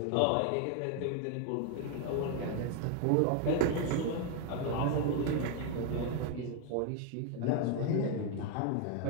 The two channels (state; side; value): different; both; correlation 0.01